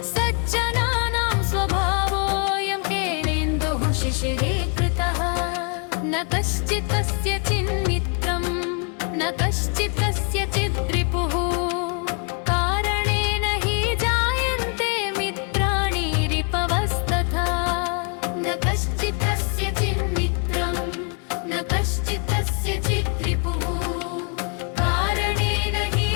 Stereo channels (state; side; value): quieter; right; 38.1 dB